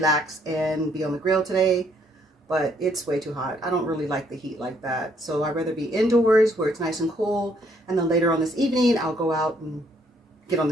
and be on the grill today, but it's way too hot. I don't really like the heat like that. So I'd rather be indoors where it's nice and cool. And then later on this evening, I'll go out and get on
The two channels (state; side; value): normal; both; correlation 0.68